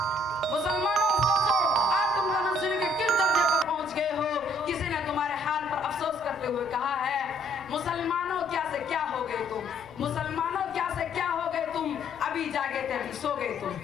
مسلمانوں سوچو آج تم تنزلی کے کس درجے پر پہنچ گئے ہو۔ کسی نے تمہارے حال پر افسوس کرتے ہوئے کہا ہے مسلمانوں کیا سے کیا ہو گئے تم، مسلمانوں کیا سے کیا ہو گئے تم، ابھی جاگے تھے ابھی سو گئے تم۔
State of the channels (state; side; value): noise; right; rumble, 24 dB below the sound